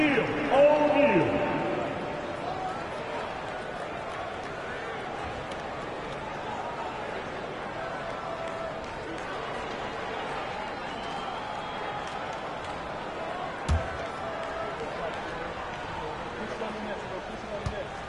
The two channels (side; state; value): both; identical; correlation 1.00